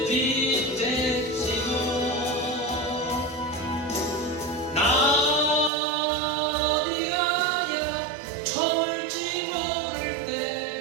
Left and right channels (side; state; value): left; drops out; at 5.7 s